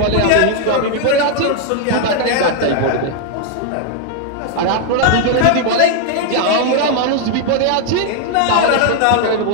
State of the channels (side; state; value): both; different; correlation 0.00